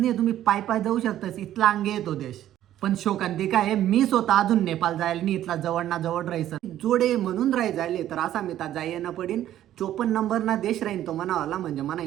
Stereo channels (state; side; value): quieter; left; 12.3 dB